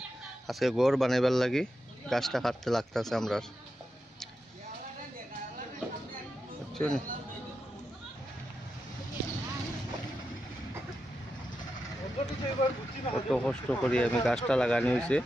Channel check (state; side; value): normal; both; correlation 0.88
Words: আজকে ঘর বানাইবার লাগি গাছটা কাটতে লাগতেছে আমরা। কত কষ্ট করি আমি গাছটা লাগানি হয়েছে।